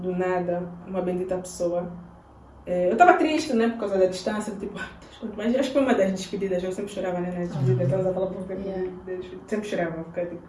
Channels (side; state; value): both; identical; correlation 1.00